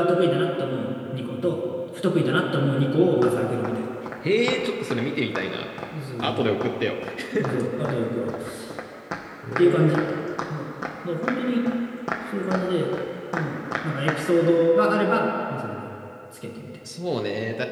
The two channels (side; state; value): both; identical; correlation 1.00